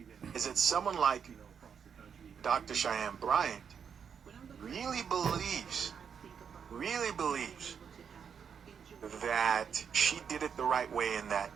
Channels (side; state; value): left; quieter; 7.1 dB